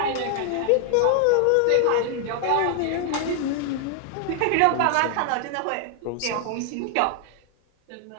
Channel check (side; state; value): both; different; correlation 0.00